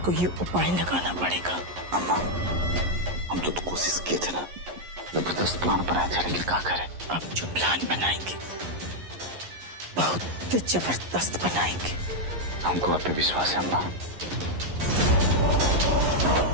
कोई उपाय लगाना पड़ेगा। अम्मा, हम तो कोशिश किए थे ना, जबरदस्त प्लान बनाए थे, लेकिन क्या करें? अब जो प्लान बनाएंगे बहुत जबरदस्त बनाएंगे। हमको आप पे विश्वास है अम्मा।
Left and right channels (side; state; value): left; late; 11 ms